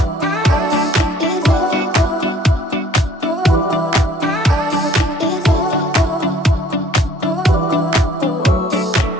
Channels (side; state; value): both; normal; correlation 0.56